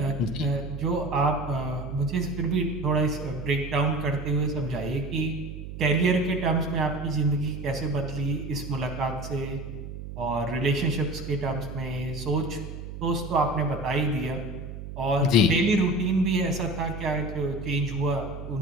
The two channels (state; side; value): noise; right; hum, 9 dB below the sound